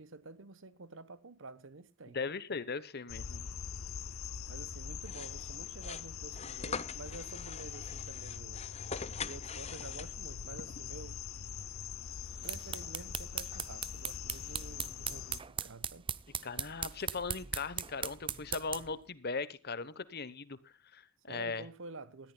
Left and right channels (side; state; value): both; normal; correlation 0.05